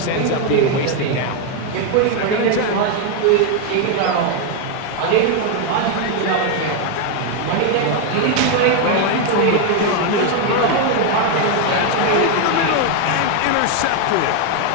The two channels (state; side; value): different; both; correlation 0.01